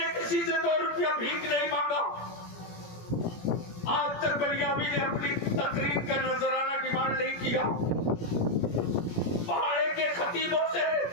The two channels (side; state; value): right; late; 17 ms